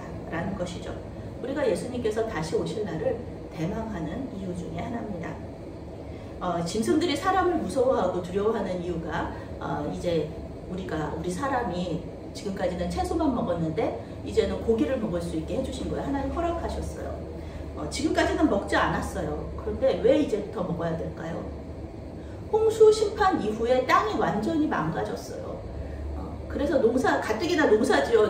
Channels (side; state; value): both; identical; correlation 1.00